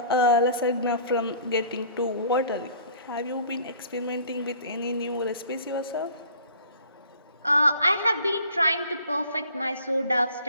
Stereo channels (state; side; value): inverted; both; correlation -0.50